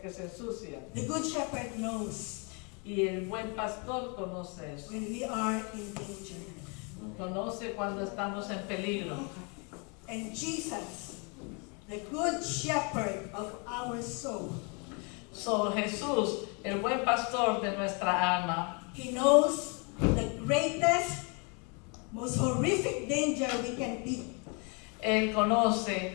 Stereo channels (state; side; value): quieter; right; 33.9 dB